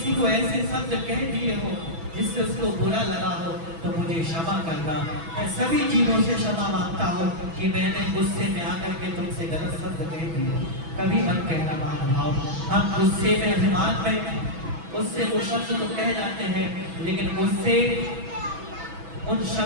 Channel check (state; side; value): late; left; 6.1 ms